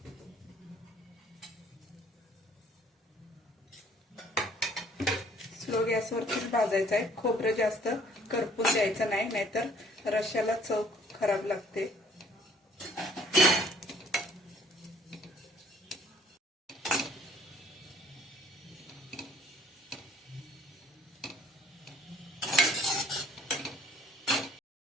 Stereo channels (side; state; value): both; normal; correlation 0.58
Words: स्लो गॅसवरतीच भाजायचं आहे. खोबरं जास्त करपून द्यायचं नाही, नाहीतर रश्श्याला चव खराब लागते.